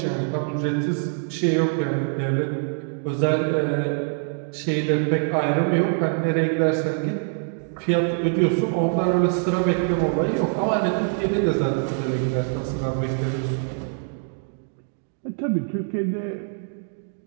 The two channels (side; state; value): left; silent; 58 dB below the other